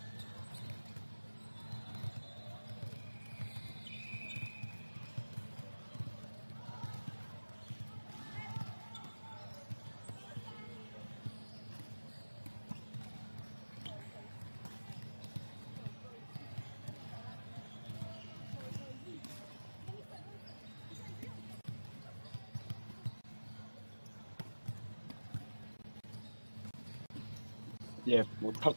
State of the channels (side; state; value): both; inverted; correlation -1.00